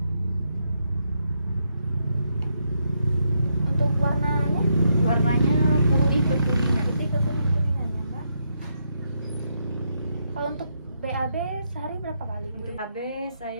Untuk warnanya? Warnanya putih kekuningan. Putih ke kuning-kuningan ya Mbak. Kalau untuk BAB sehari berapa kali? Untuk KB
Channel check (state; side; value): inverted; both; correlation -0.79